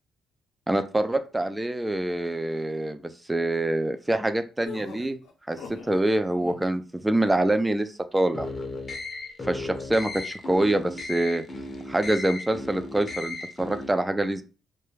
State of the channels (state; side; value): normal; both; correlation 0.95